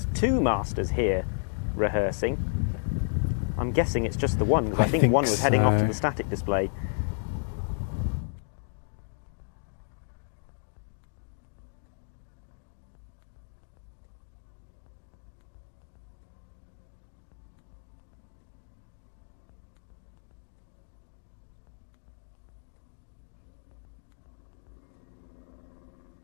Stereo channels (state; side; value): silent; right; digital silence